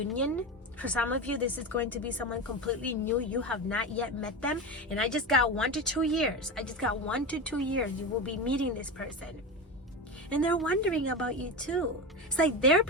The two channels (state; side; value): normal; both; correlation 0.21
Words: For some of you, this is going to be someone completely new. You have not yet met them. And I just got 1 to 2 years. I just got 1 to 2 years. You will be meeting this person. And they're wondering about you too. It's like they're